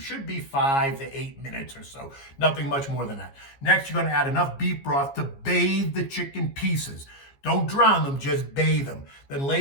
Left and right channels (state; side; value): late; right; 15 ms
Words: be 5 to 8 minutes or so. Nothing much more than that. Next, you're going to add enough beef broth to bathe the chicken pieces. Don't drown them, just bathe them. Then lay